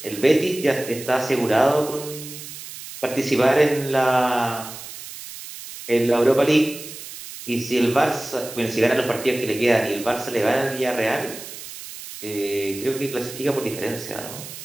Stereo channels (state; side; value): noise; right; hiss, 12 dB below the sound